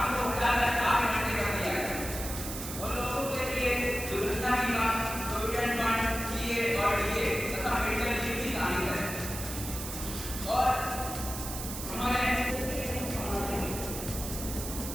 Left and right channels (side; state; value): right; noise; hiss, 7 dB below the sound